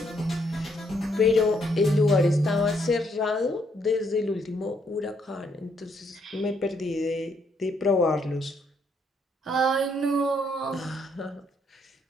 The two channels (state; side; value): normal; both; correlation 0.72